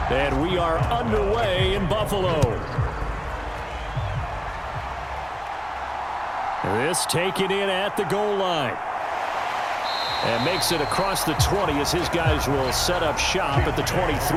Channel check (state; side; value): identical; both; correlation 1.00